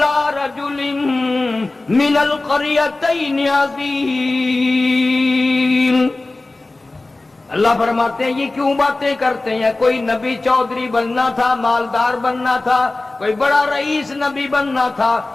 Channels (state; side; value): quieter; right; 3.1 dB